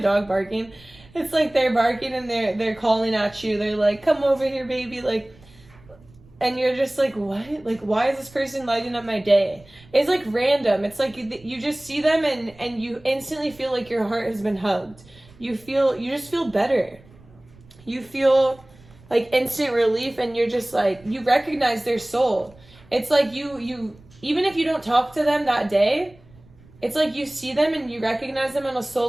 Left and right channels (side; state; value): right; noise; rumble, 25 dB below the sound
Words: barking? It's like they're barking and they're calling at you. They're like, come over here, baby, like. And you're just like, what? Like, why is this person lighting up my day? It's like random. It's like you just see them and you instantly feel like your heart has been hugged. You just feel better. You feel like instant relief, and you're just like, you recognize their soul. It's like you even if you don't talk to them that day, it's like you see them and you recognize them on a soul